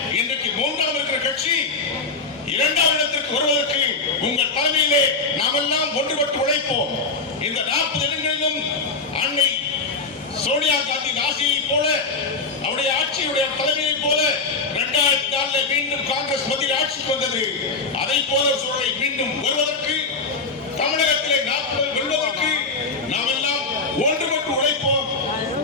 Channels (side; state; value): right; quieter; 4.1 dB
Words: இன்றைக்கு 3ஆம் இருக்கிற கட்சி இரண்டாவது இடத்திற்கு வருவதற்கு உங்கள் தலைமையிலே நாமெல்லாம் ஒன்றுபட்டு உழைப்போம். இந்த 40 இடங்களிலும் அன்னை சோனியா காந்தி ஆட்சியை போல, அவருடைய ஆட்சியுடைய தலைமையை போல 2004 மீண்டும் காங்கிரஸ் மத்தியில் ஆட்சிக்கு வந்தது. அதை போல சூழலை மீண்டும் வருவதற்கு, தமிழகத்திலே 40 வெல்வதற்கு நாம் எல்லாம் ஒன்றுபட்டு உழைப்போம்.